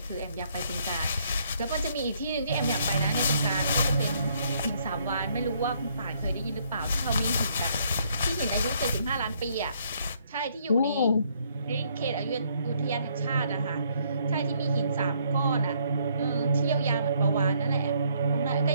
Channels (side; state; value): both; inverted; correlation -0.68